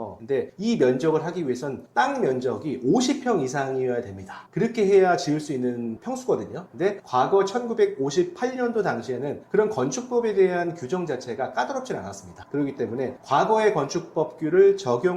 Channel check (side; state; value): both; identical; correlation 1.00